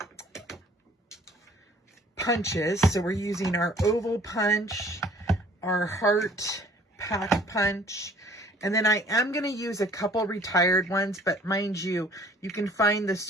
punches. So we're using our oval punch, our heart pack punch, and then I am going to use a couple retired ones, but mind you, you can find the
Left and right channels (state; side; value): normal; both; correlation 0.54